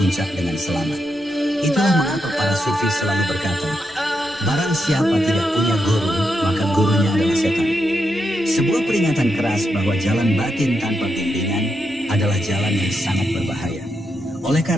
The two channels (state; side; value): noise; right; rumble, 28 dB below the sound